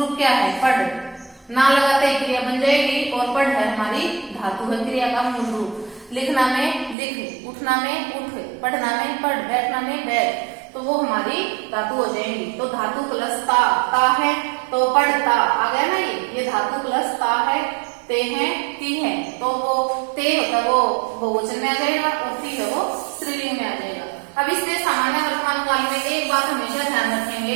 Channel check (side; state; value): left; drops out; at 7.0 s